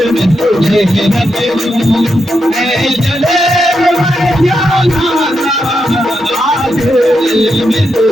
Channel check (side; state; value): both; normal; correlation 0.84